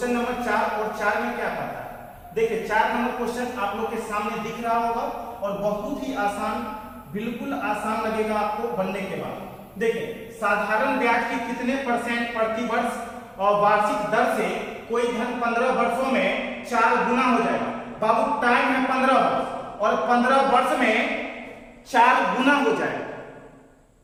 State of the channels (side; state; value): both; identical; correlation 1.00